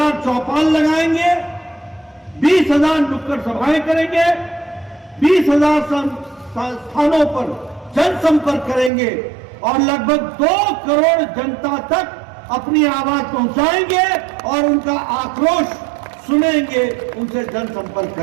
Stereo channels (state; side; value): drops out; left; at 8.9 s